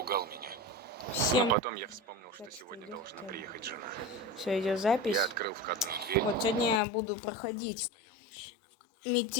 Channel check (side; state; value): right; drops out; at 6.8 s